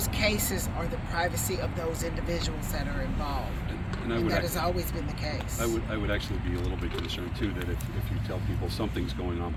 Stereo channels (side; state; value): both; identical; correlation 1.00